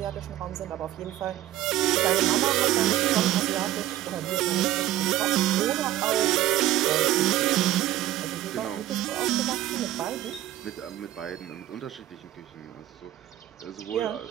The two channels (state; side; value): quieter; left; 13.7 dB